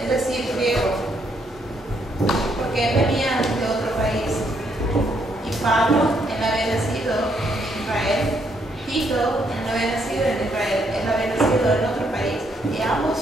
es decir, griego, porque él venía de otro país. Y Pablo, él había nacido en Israel. Tito, él no había nacido en Israel, él había nacido en otro país. Y ambos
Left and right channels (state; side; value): normal; both; correlation 0.73